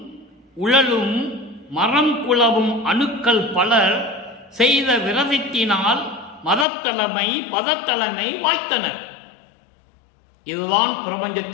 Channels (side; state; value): right; drops out; at 6.7 s